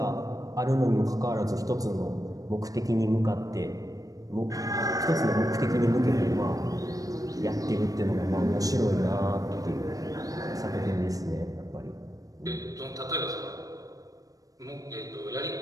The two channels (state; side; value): late; left; 0.17 ms